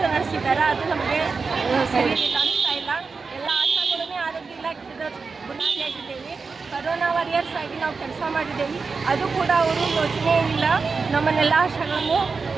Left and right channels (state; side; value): quieter; left; 4.7 dB